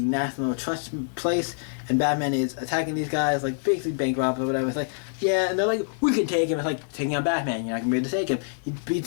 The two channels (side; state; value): right; silent; digital silence